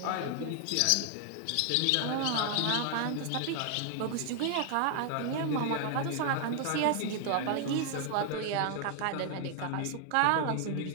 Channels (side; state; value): both; different; correlation 0.00